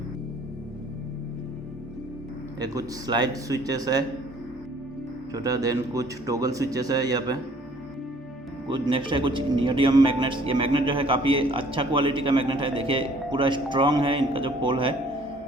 ये कुछ स्लाइड स्विचेस है छोटा, देन कुछ टॉगल स्विचेस है यहाँ पे कुछ। नेक्स्ट है कुछ नियोडियम मैग्नेट्स। ये मैग्नेट जो है काफ़ी अच्छा क्वालिटी का मैग्नेट है, देखिए पूरा स्ट्रॉन्ग है इनका जो पोल है,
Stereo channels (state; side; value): normal; both; correlation 0.57